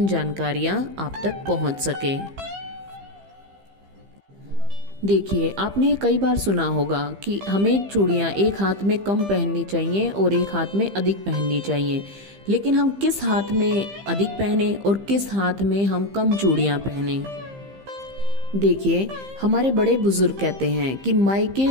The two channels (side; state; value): left; late; 15 ms